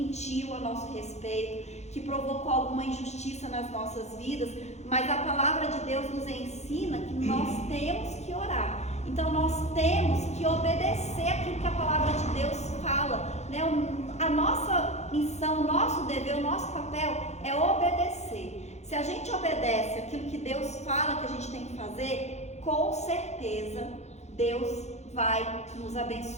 a nosso respeito, que provocou alguma injustiça nas nossas vidas. Mas a palavra de Deus nos ensina que nós temos que orar. Então nós temos que obedecer aquilo que a palavra de Deus fala, né? A nossa missão, o nosso dever, o nosso papel é obedecer. Se a gente obedece aquilo que Deus fala que a gente tem que fazer, com certeza Deus vai nos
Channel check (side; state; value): right; late; 0.32 ms